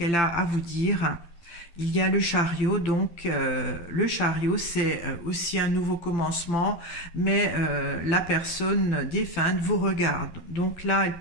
a à vous dire ? Il y a le chariot, donc le chariot c'est aussi un nouveau commencement, mais la personne défunte vous regarde. Donc là, elle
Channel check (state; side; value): late; right; 12 ms